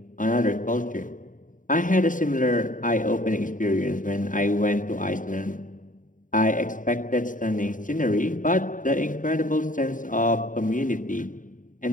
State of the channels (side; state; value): right; late; 0.38 ms